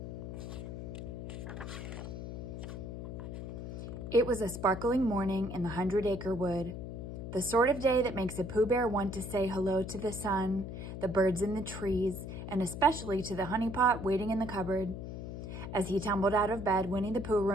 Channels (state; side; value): noise; left; hum, 7 dB below the sound